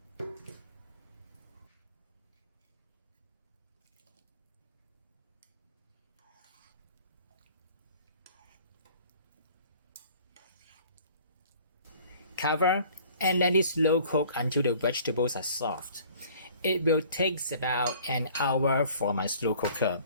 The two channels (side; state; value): both; inverted; correlation -0.52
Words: Cover and let it slow cook until the vegetables are soft. It will take about an hour for my slow cooker